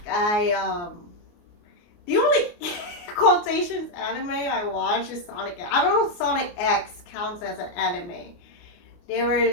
The only quotations anime I watch is Sonic. I don't know if Sonic X counts as an anime. There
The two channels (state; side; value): late; right; 29 ms